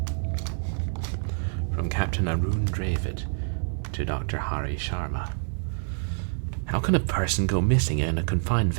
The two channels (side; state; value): left; silent; digital silence